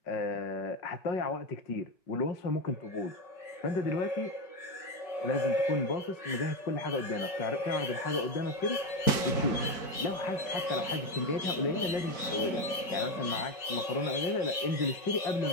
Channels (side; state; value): right; late; 5.3 ms